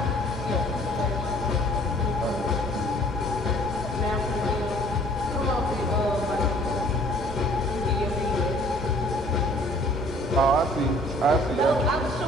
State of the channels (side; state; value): both; normal; correlation 0.55